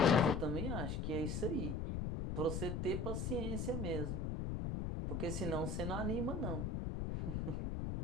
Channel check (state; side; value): noise; left; rumble, 1 dB below the sound